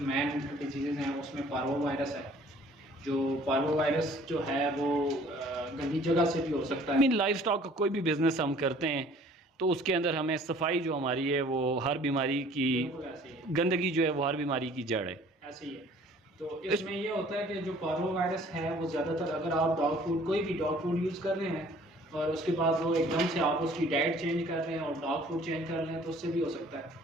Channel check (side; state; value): both; normal; correlation 0.54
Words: डिजीज़ हैं, उसमें पार्वो वायरस है। जो पार्वो वायरस जो है वो गंदी जगह से भी हो सकता है। लाइफ स्टॉक का कोई भी बिज़नेस हम करते हैं तो उसके अंदर हमें सफाई जो हमारी है वो हर बीमारी की, गंदगी जो है वो हर बीमारी की जड़ है। ऐसे ही है। तो इसमें ये होता है कि जो पार्वो वायरस है वो ज़्यादातर अगर आप डॉग फूड, कोई भी डॉग फूड यूज़ कर रहे हैं और उसके बाद वो एकदम से आप उसकी डाइट चेंज कर रहे हैं और डॉग फूड चेंज कर रहे हैं, तो उससे भी हो सकता